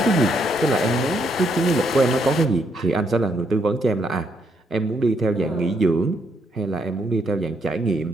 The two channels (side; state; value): both; normal; correlation 0.74